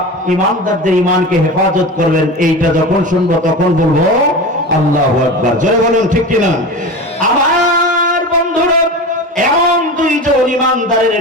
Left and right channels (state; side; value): normal; both; correlation 0.29